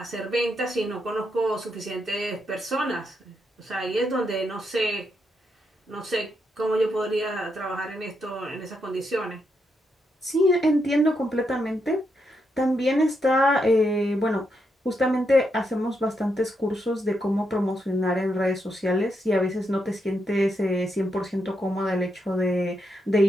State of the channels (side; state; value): both; normal; correlation 0.81